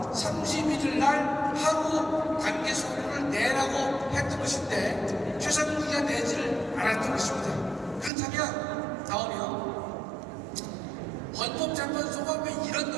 31일 날 하루 단계 서류를 내라고 했던 것인데 최상목이가 내지를 않았던 것입니다. 그렇다면 나오면 헌법재판소가 왜 이런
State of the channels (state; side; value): drops out; left; at 8.1 s